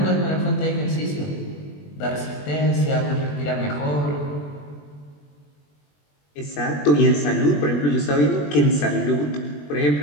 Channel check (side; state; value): right; late; 21 ms